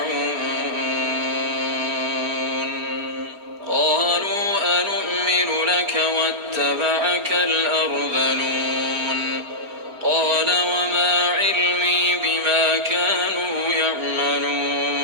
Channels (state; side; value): late; left; 4.8 ms